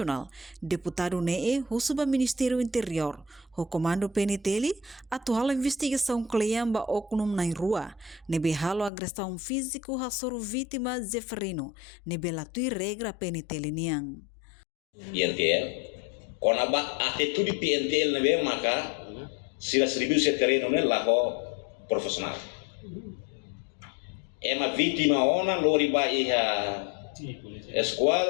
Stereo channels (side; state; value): right; drops out; at 8.9 s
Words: deputado NEE, o Ministério Interior, o Comando PNT, atual investigação Cleamba Oknum na rua, nebe halo agressão físico a soro vítima Zeferino, nebe latui regra PNT niang. PNTL, kon aba atitude PNTL nebe maka sila seribu terreno ne laho profesional. Ema vítima ona lori ba iha